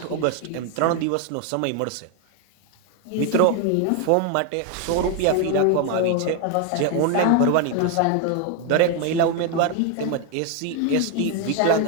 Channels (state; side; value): different; both; correlation 0.01